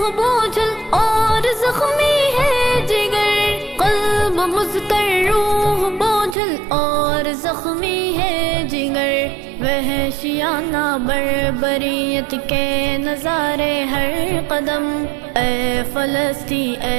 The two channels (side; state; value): left; drops out; at 6.4 s